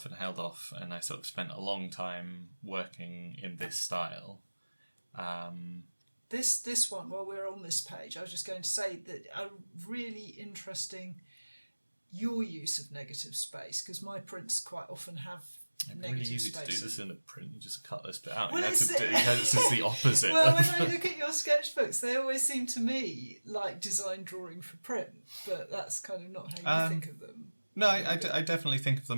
and I sort of spent a long time working in this style. This one, while we're on this page, I was just going to say that a really interesting your use of negative space, because my prints quite often have negative really easy space. To do this in a print. You just cut this bit out. Well, this is the opposite. Well, when I look at your sketchbooks, they always seem to me like design drawing for print, but that's kind of not how you think of them. No, I definitely think of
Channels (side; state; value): both; inverted; correlation -1.00